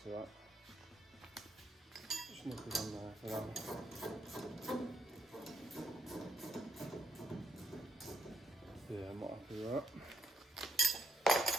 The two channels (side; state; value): both; normal; correlation 0.76